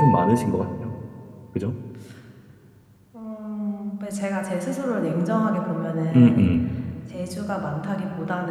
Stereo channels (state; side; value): identical; both; correlation 1.00